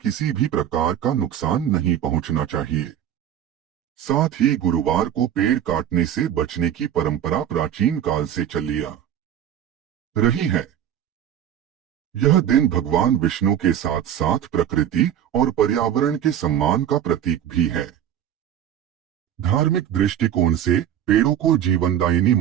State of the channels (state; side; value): quieter; left; 10.2 dB